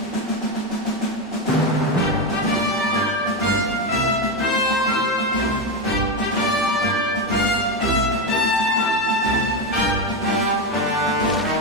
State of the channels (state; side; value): normal; both; correlation 0.12